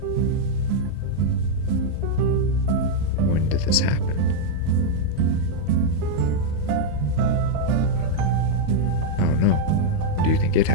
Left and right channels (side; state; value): both; different; correlation -0.01